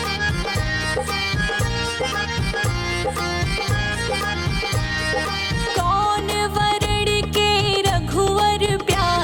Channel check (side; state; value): both; identical; correlation 1.00